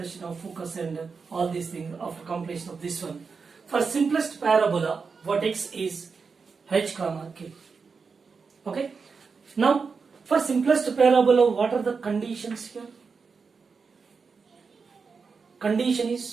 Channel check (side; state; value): left; quieter; 5.1 dB